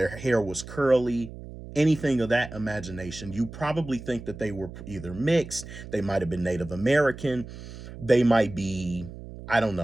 hair was curly, anything of that imagination, you probably think that they were either mixed, they might have been Native American, they might be, I don't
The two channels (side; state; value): right; noise; hum, 13 dB below the sound